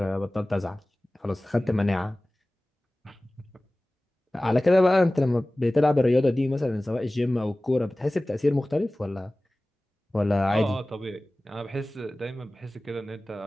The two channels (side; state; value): both; normal; correlation 0.98